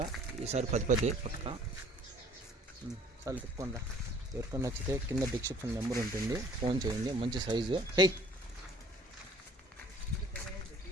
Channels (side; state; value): both; normal; correlation 0.54